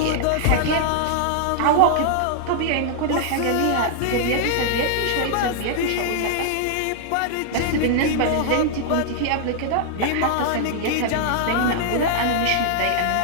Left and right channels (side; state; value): both; different; correlation -0.01